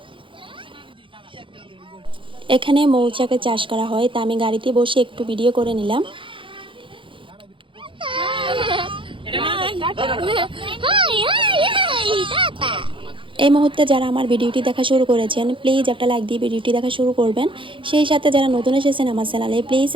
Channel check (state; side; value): late; left; 0.25 ms